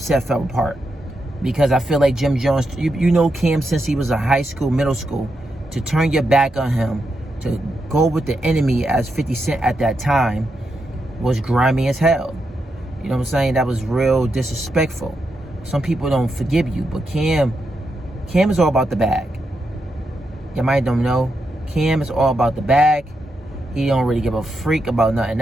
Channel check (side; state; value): both; normal; correlation 0.84